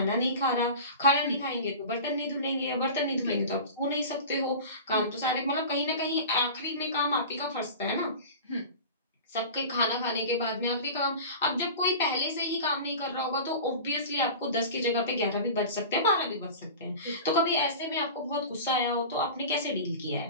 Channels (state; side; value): inverted; both; correlation -0.34